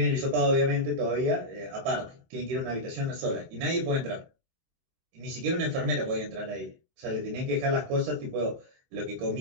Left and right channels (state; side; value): late; left; 23 ms